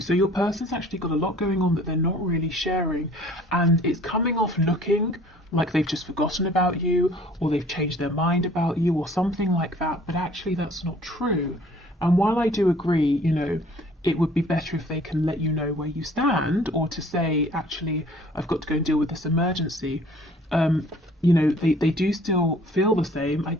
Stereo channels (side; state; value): both; normal; correlation 0.53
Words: your person's actually got a lot going on that they're not really sharing, and it's coming off looking like they've just forgotten about you, or they've changed their mind about you, or something like that, but actually that's not true. And while I do agree, you know, it would be better if they can let you know where you stand, or to say, actually, I've got to go and deal with this emergency. You know, they do still feel the same. I